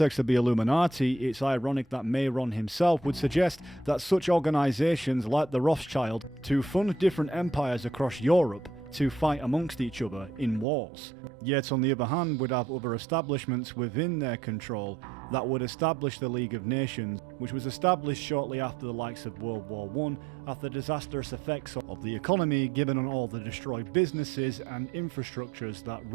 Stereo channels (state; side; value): drops out; left; at 10.7 s